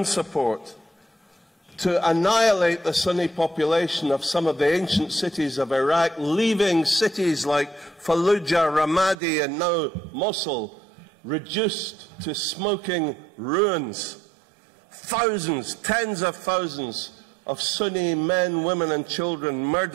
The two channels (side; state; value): left; drops out; at 9.2 s